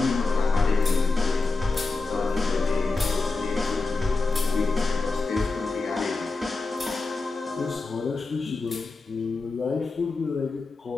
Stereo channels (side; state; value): right; quieter; 3.7 dB